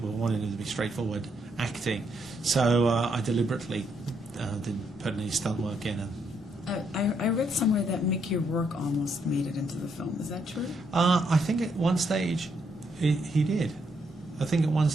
be straightforward acting. So I deliberately didn't put any stunt work in. I read somewhere that Mickey Rourke almost made it into the film. Is that true? I think at one stage he did. I think at one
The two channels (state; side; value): normal; both; correlation 0.75